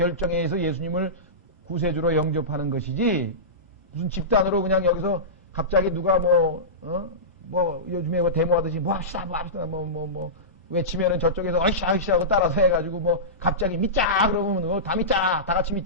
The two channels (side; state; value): both; normal; correlation -0.18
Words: 의해서 예수님을 구세주로 영접하는 것이지, 무슨 집단으로 그냥 여기서 갑자기 누가 요즘에 데모하듯이 합시다 외치면은 저쪽에서 어이씨 하고 따라서 해가지고 갑자기 믿자 그러면 다 믿자, 다 같이